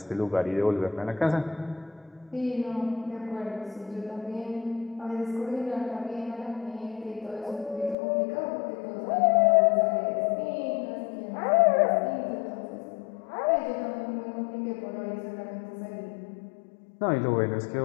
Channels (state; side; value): drops out; right; at 8.0 s